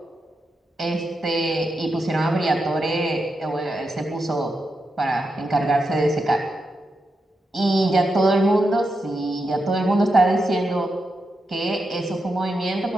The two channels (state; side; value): normal; both; correlation 0.86